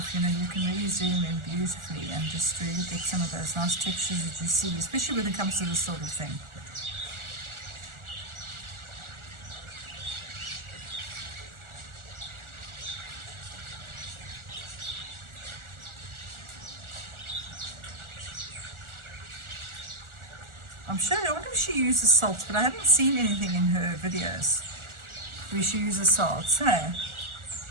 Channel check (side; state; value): left; late; 1.4 ms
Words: You know, you can really zoom in beautifully and just really get some of those nice textures that you see, especially when it comes to this sort of thing. I'm sure, I wonder if she uses salts, but I haven't seen anything in her videos where she uses salts, hey?